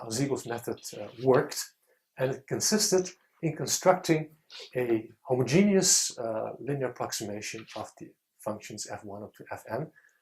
Siegel's method worked, and it consisted in constructing a homogeneous linear approximation of the functions f1 up to fn,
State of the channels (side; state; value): both; identical; correlation 1.00